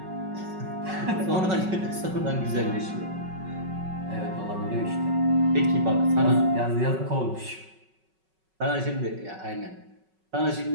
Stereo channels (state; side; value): late; left; 5.3 ms